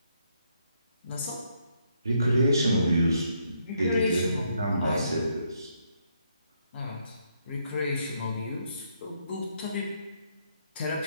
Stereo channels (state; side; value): inverted; both; correlation -0.74